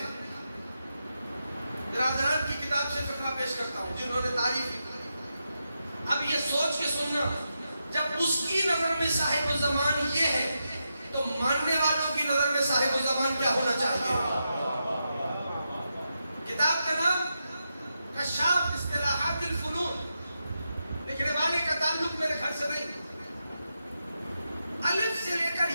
برادران کی کتاب سے فقرہ پیش کرتا ہوں جنہوں نے تعریف کی. اب یہ سوچ کے سننا، جب اس کی نظر میں صاحب الزمان یہ ہے تو ماننے والوں کی نظر میں صاحب الزمان کیا ہونا چاہیے؟ کتاب کا نام کشاف اصطلاحات الفنون، لکھنے والے کا تعلق میرے گھر سے نہیں. الف سے لے کر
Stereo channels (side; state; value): both; inverted; correlation -0.86